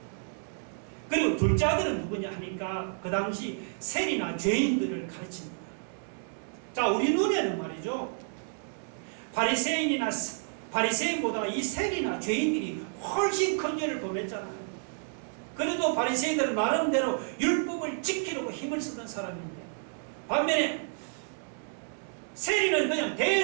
그리고 둘째 아들은 누구냐 하니까 그 당시 세리나 죄인들을 가르칩니다. 자, 우리 눈에는 말이죠, 바리새인보다 이 세리나 죄인들이 훨씬 큰 죄를 범했잖아요. 그래도 바리새인들은 나름대로 율법을 지키려고 힘을 쓰던 사람인데 반면에 세리는 그냥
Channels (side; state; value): left; silent; 58 dB below the other